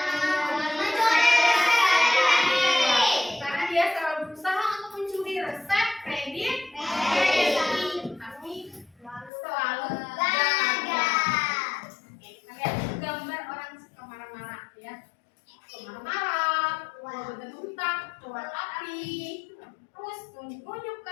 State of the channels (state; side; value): drops out; right; at 9.3 s